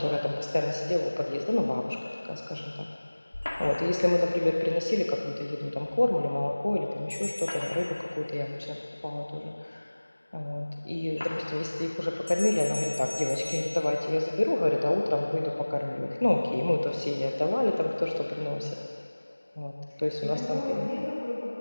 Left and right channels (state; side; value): inverted; both; correlation -1.00